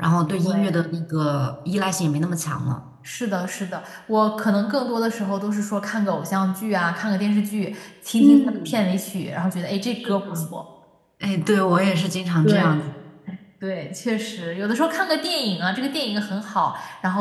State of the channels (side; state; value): both; identical; correlation 1.00